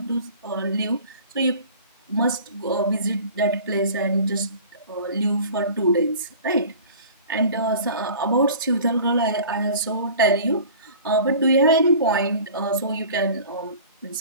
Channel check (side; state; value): both; inverted; correlation -0.43